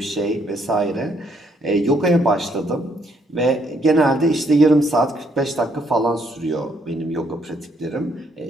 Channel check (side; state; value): both; normal; correlation 0.71